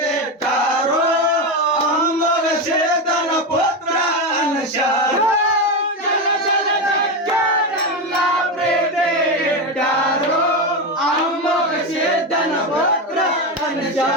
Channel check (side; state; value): both; normal; correlation 0.14